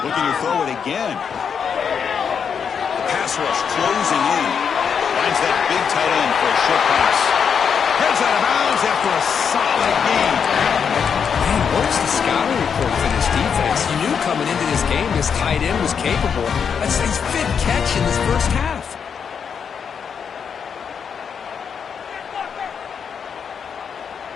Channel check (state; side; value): quieter; right; 6.9 dB